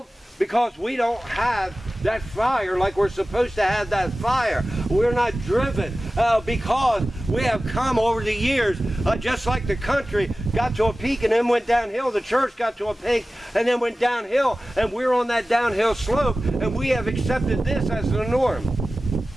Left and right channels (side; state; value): both; normal; correlation 0.96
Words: Because we don't have that fire like we're supposed to have that fire. We're not driven because we have come over the years, just like the country got to a peak and then went downhill. The church got to a peak and then went downhill, and we're on that downhill slope, and we have accepted this as the norm.